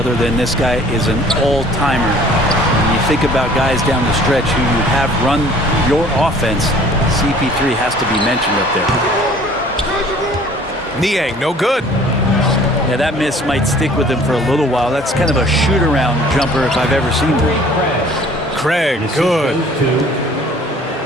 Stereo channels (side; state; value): both; normal; correlation 0.52